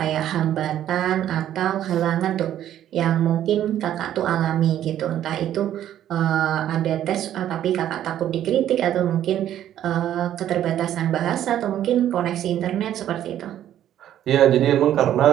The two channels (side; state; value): left; quieter; 11.4 dB